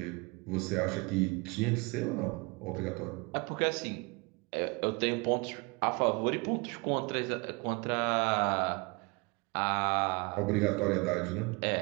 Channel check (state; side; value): quieter; left; 28.1 dB